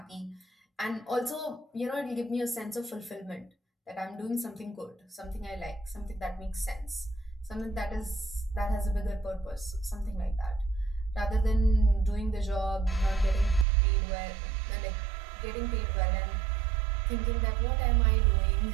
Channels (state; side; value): drops out; left; at 13.7 s